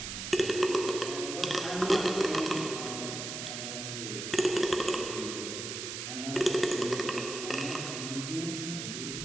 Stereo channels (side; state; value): right; noise; hiss, 6 dB below the sound